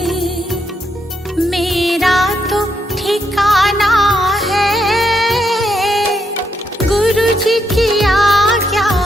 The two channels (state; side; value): normal; both; correlation 0.78